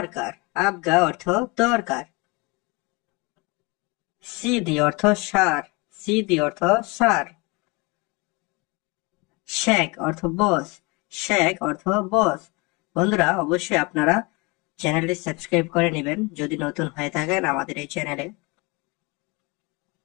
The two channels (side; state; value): right; quieter; 27.5 dB